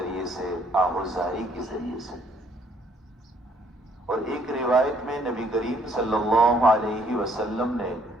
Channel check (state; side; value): normal; both; correlation 0.65